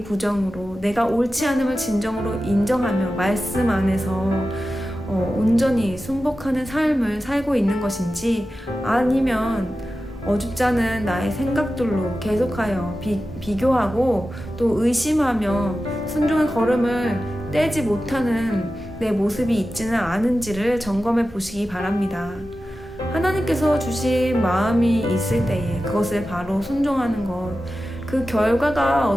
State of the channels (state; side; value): normal; both; correlation 0.93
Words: 부정으로 내가 옳지 않음을 진정으로 인정하며 말씀 안에서 온전히 순복하는 삶을 살고 있는 것인지 아니면 어줍지 않은 나의 생각들로 계속하여 비교하고 또 의심하며 순종의 걸음을 떼지 못하는 내 모습이 있지는 않은지를 점검해 보시기 바랍니다. 하나님께서 주신 마음이 있을 때에 그것을 바로 순종하는 것, 그 결과가